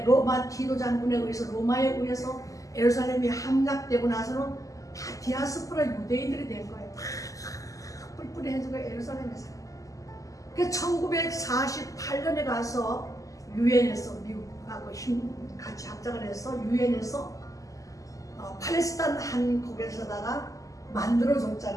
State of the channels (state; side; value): late; right; 0.16 ms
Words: 로마 디도 장군에 의해서 로마에 의해서 예루살렘이 함락되고 나서는 다 디아스포라 유대인들이 된 거예요. 다 뿔뿔이해지고 예루살렘에서. 그래서 1948년에 가서 유엔에서 미국하고 같이 합작을 해서 유엔에서 팔레스타인 한 곳에서다가